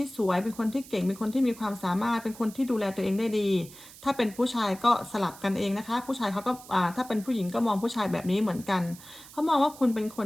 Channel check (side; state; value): right; noise; hiss, 19 dB below the sound